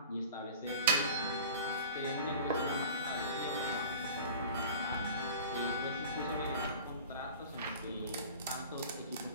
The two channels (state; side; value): inverted; both; correlation -0.39